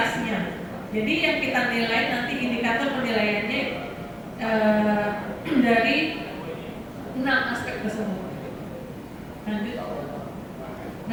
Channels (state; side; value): identical; both; correlation 1.00